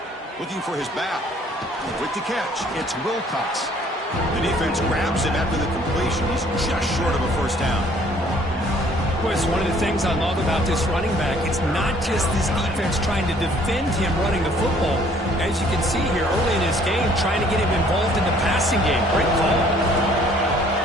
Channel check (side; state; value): both; normal; correlation 0.59